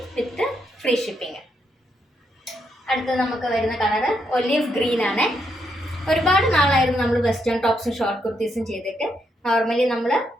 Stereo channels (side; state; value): both; normal; correlation 0.79